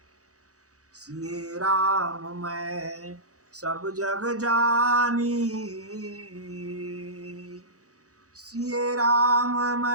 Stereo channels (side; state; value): left; late; 0.66 ms